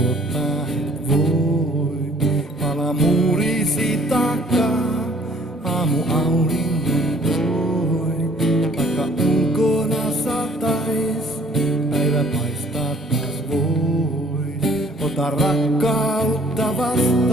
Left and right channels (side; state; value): both; normal; correlation 0.58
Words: et voi? Pala muurisi takaa, aamu auringon toi. Vaikka ulkona satais, päivä paistaa taas vois. Ota rakkautta